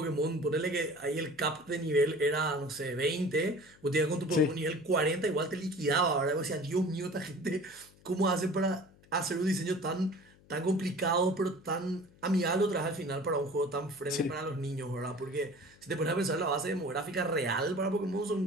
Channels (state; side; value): noise; left; hum, 27 dB below the sound